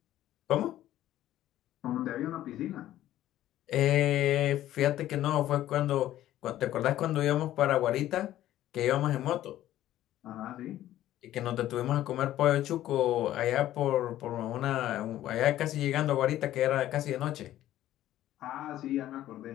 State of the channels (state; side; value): quieter; right; 13.4 dB